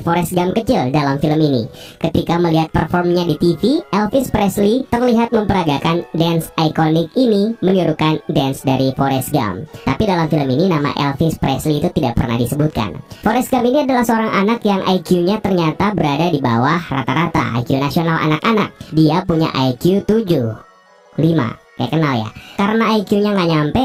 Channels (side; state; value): both; identical; correlation 1.00